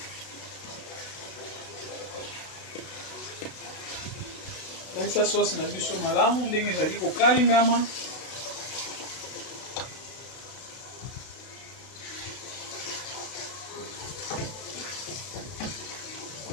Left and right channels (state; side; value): late; right; 32 ms